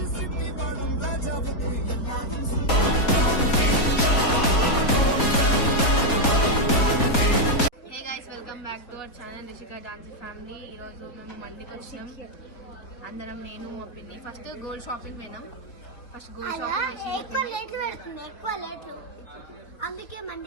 back to our channel Rishika dance family. ఈరోజు మేము మండికి వచ్చినాం అందరం, నేను మా పిన్ని. ఫస్ట్ గోల్డ్ షాపింగ్ పోయినాం. ఫస్ట్ గోల్డ్ షాపింగ్ అందుకే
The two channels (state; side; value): late; right; 4.2 ms